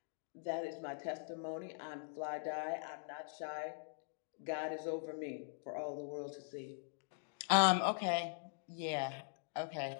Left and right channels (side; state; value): right; silent; digital silence